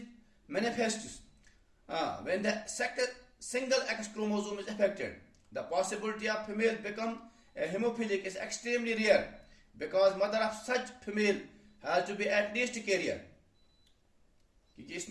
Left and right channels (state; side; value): identical; both; correlation 1.00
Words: manifests when the single X chromosome is affected. The possibility of female become a hemophilic is extremely rare because mother of such female has to be at least a carrier. क्योंकि